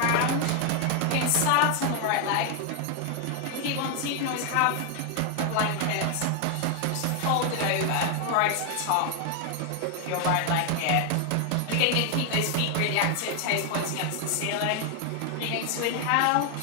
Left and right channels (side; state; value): both; different; correlation 0.00